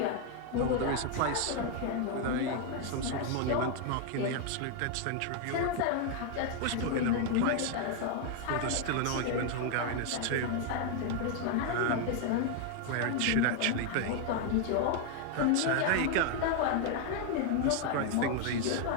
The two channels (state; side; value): different; both; correlation 0.00